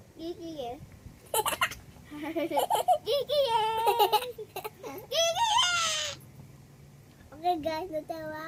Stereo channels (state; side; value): identical; both; correlation 1.00